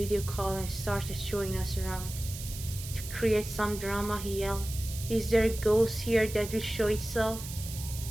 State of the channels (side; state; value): right; noise; hiss, 11 dB below the sound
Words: call and started showing us around. To create some drama, he yelled, "Is there a ghost here that will show itself?"